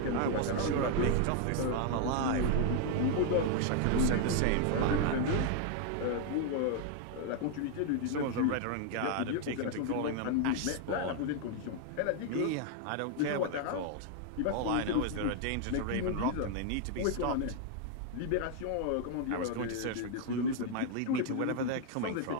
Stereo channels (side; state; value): both; different; correlation 0.00